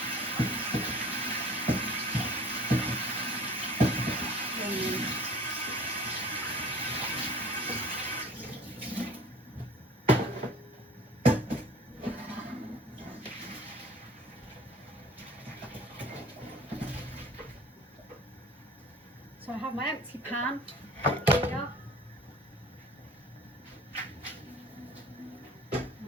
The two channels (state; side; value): normal; both; correlation 0.46